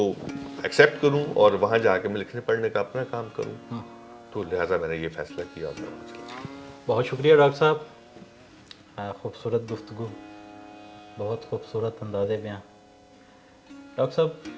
ایکسیپٹ کروں اور وہاں جا کے میں لکھنے پڑھنے کا اپنا کام کروں. تو لہٰذا میں نے یہ فیصلہ کیا. بہت شکریہ ڈاکٹر صاحب، خوبصورت گفتگو، بہت خوبصورت انداز بیاں. ڈاکٹر صاحب،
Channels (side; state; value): both; identical; correlation 1.00